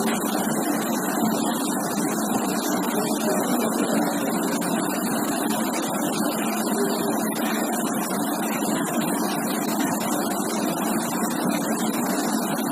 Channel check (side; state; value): both; identical; correlation 1.00